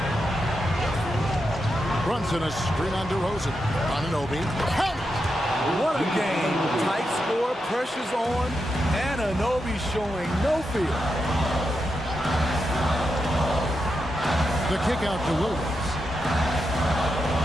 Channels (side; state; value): both; normal; correlation 0.86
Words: Brunson a screen on DeRozan. Anunoby. Count it! What a game. Tight score, pressure's on, and Anunoby showing no fear. The kick out to Williams.